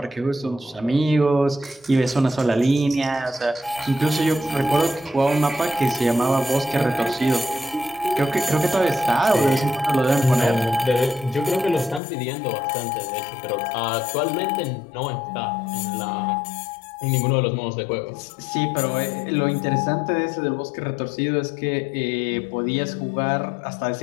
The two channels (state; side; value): drops out; right; at 12.0 s